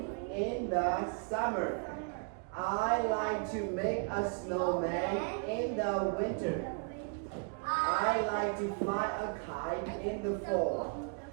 in the summer. I like to make a snowman in the winter. I like to fly a kite in the fall.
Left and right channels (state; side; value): quieter; left; 37.2 dB